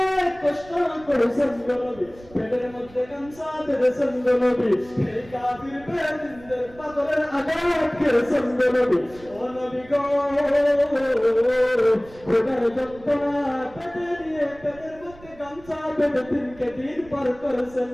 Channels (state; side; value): noise; right; rumble, 22 dB below the sound